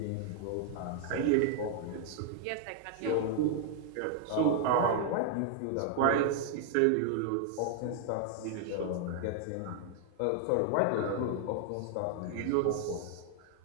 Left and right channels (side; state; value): both; different; correlation 0.00